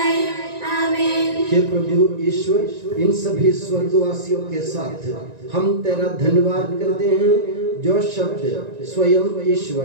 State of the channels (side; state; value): left; late; 1.9 ms